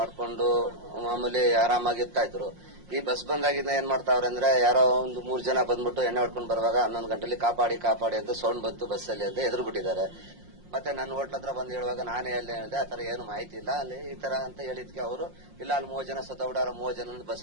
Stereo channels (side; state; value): left; late; 5.6 ms